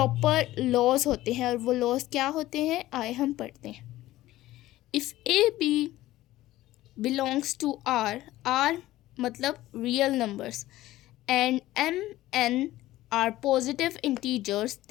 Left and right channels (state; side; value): quieter; right; 15.9 dB